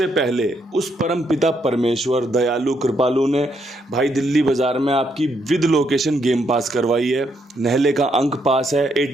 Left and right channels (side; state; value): both; normal; correlation 0.76